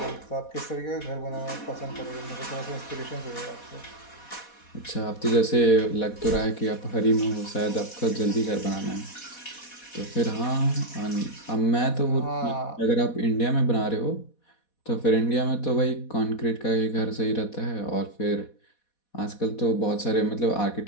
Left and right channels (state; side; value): late; right; 4.1 ms